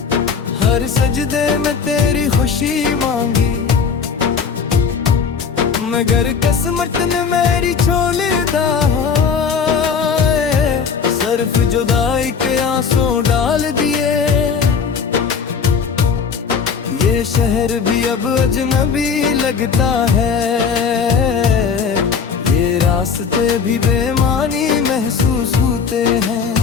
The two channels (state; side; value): quieter; right; 6.0 dB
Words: हर सजदे में तेरी खुशी मांगी, मगर किस्मत ने मेरी छोड़ दा, सिर्फ जुदाई के आंसू डाल दिए। ये शहर भी अब अजनबी लगता है, ये रास्ते भी बेमानी महसूस होते हैं,